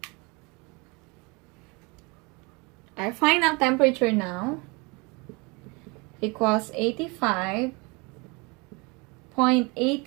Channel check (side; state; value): left; quieter; 28.3 dB